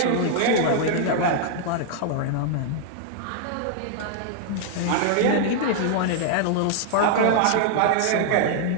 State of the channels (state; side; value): different; both; correlation -0.01